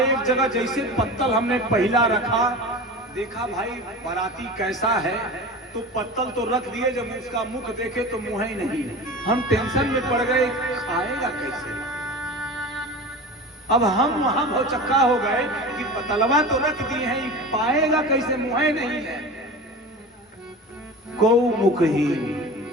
जगह जैसे पत्तल हमने पहला रखा, देखा भाई बाराती कैसा है, तो पत्तल तो रख दिए, जब उसका मुख देखे तो मुंह ही नहीं। हम टेंशन में पड़ गए, खाएगा कैसे? अब हम वहां भौचक्का हो गए कि पतलवा तो रख दिए हैं, पाएगा कैसे, मुंह ही नहीं है। को मुखहीन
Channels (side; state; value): both; normal; correlation 0.32